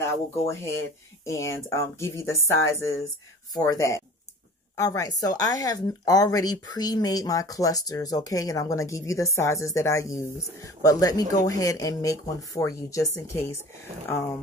I will go ahead and give you the sizes for that. All right, so I have already pre-made my clusters, okay, and I'm going to give you the sizes that I use. But let me go ahead and make one for you just in case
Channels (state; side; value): normal; both; correlation 0.43